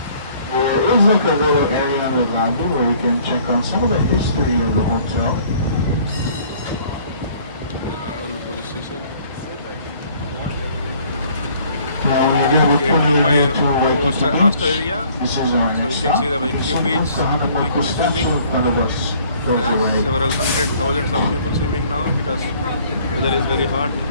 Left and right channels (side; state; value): both; inverted; correlation -0.57